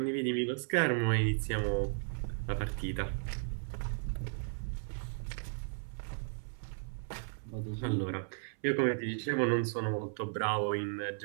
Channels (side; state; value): left; silent; 54 dB below the other